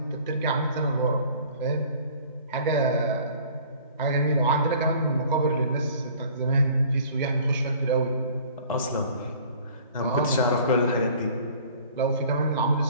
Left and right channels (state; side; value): inverted; both; correlation -0.51